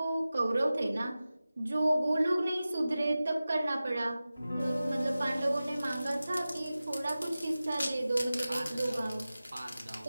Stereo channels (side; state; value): both; inverted; correlation -0.96